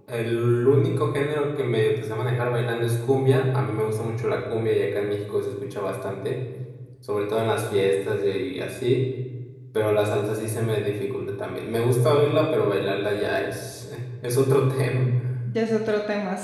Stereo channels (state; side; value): identical; both; correlation 1.00